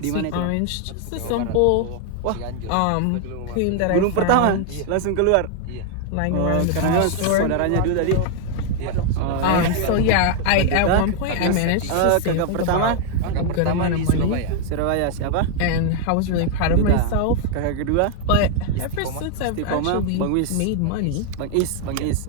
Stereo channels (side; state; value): both; different; correlation 0.00